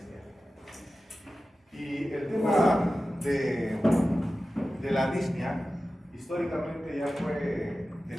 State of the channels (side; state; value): both; normal; correlation 0.94